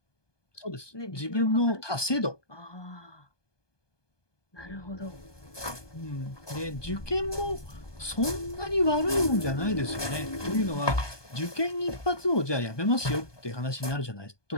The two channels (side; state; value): right; late; 1.2 ms